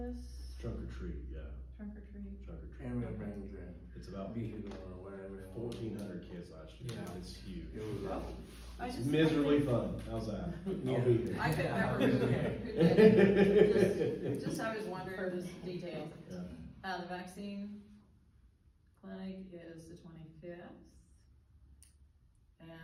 Trunk or treat, yeah, Trunk or treat? trunk or treat. And we'll bring the It's about vehicle or whatever. they want. 1,400 kids last year, Yeah. it's huge. It was, I It's just- miserably fun, how's that? I'll be here. I couldn't remember who did it. Just I was wondering, just details. Yeah. The vaccine clinic is the 25th.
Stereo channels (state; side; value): identical; both; correlation 1.00